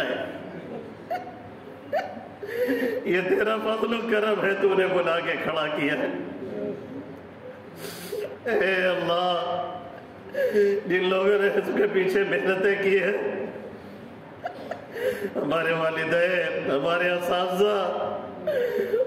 یہ تیرا فضل و کرم ہے، تو نے بلا کے کھڑا کیا ہے۔ اے اللہ جن لوگوں نے اس کے پیچھے محنتیں کی ہیں، ہمارے والدین، ہمارے اساتذہ،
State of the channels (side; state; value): both; identical; correlation 1.00